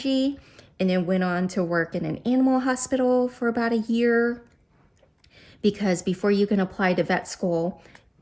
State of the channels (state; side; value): identical; both; correlation 1.00